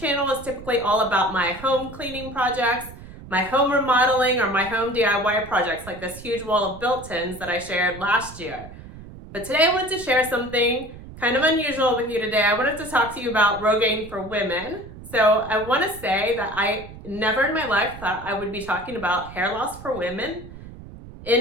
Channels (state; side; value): noise; right; rumble, 15 dB below the sound